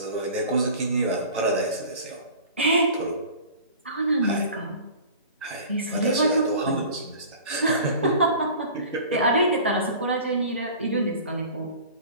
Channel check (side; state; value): both; inverted; correlation -0.42